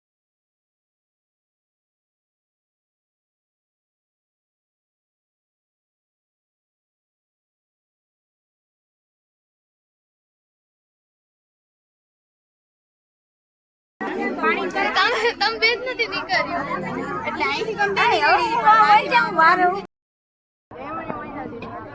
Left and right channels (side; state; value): both; identical; correlation 1.00